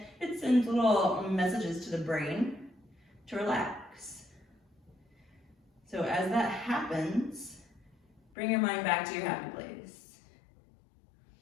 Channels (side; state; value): right; drops out; at 8.2 s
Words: it sends little messages to the brain to relax. So as that happens, bring your mind back to your happy place.